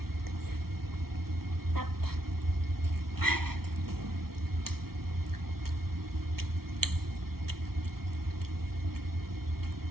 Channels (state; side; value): late; left; 0.94 ms